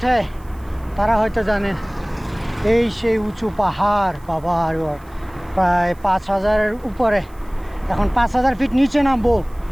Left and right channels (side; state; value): right; noise; hiss, 29 dB below the sound